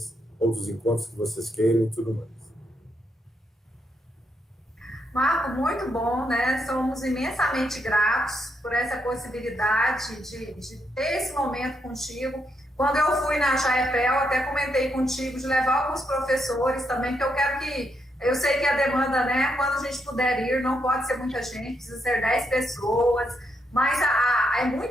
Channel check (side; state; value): both; normal; correlation 0.79